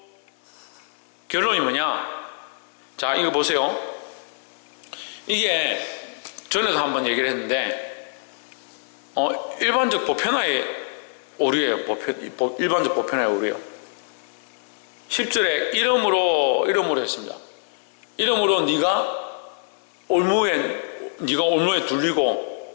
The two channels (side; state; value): right; silent; digital silence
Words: 결론이 뭐냐? 자, 이거 보세요. 이게 전에도 한번 얘기를 했는데 일반적 보편화의 오류예요. 일반적 보편화의 오류예요. 10절에 이러므로 했습니다. 이러므로 네가 올무에